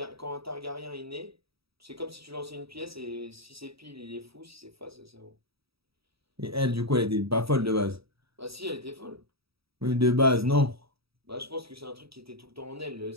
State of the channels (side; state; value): left; late; 0.77 ms